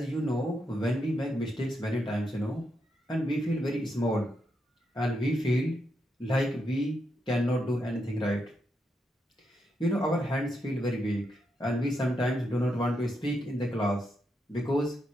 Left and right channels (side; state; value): both; normal; correlation 0.82